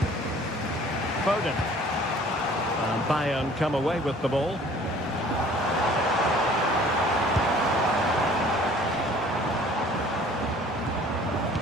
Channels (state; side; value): normal; both; correlation 0.52